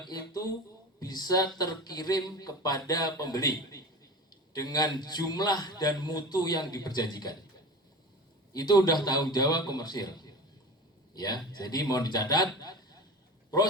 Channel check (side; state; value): both; normal; correlation 0.32